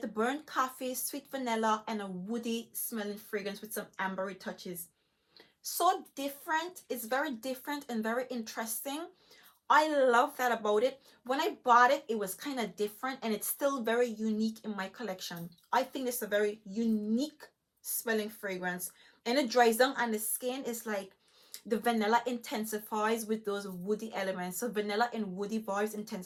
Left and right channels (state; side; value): identical; both; correlation 1.00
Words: the burnt coffee, sweet vanilla, and a woody smelling fragrance with some ambery touches. So different. It's very different and very interesting. I love that about it. When I bought it, it was kind of different, and it's still very unique in my collection. I think it's a very unique smelling fragrance, and it dries down on the skin. It's like the vanilla intensifies with those woody elements. So vanilla and woody vibes